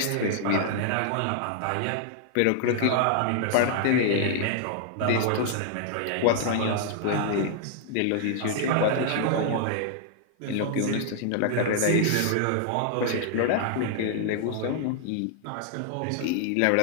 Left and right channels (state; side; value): different; both; correlation -0.01